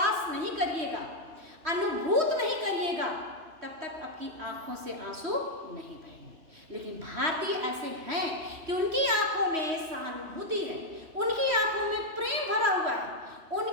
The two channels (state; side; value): late; left; 3.1 ms